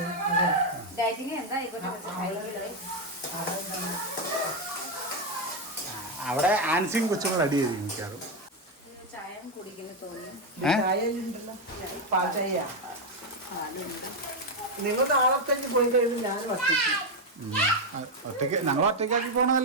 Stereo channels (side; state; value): both; normal; correlation 0.05